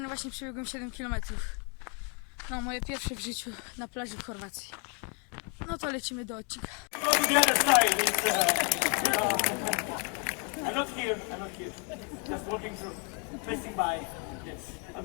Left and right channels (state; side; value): quieter; right; 36.8 dB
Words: właśnie przebiegłem 7 km. No, moje pierwsze w życiu na plaży w Chorwacji. No to lecimy do odcinka. Go to the other side. I'm not here. Just walking through, passing by. Yes, I'll